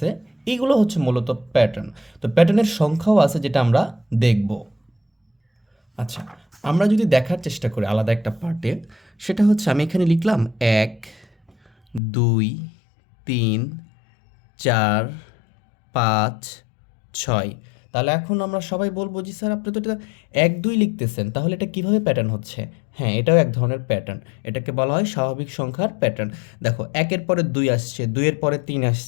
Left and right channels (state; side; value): drops out; right; at 12.0 s